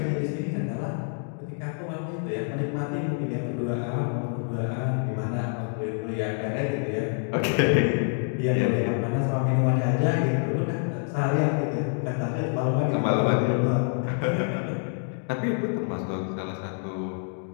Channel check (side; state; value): right; silent; 57 dB below the other